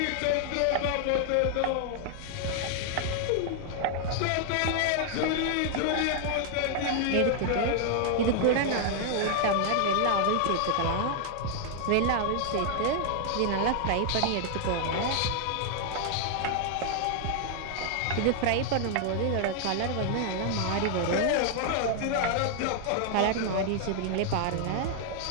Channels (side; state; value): both; different; correlation 0.00